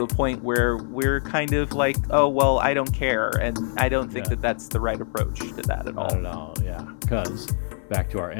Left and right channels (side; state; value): right; silent; 58 dB below the other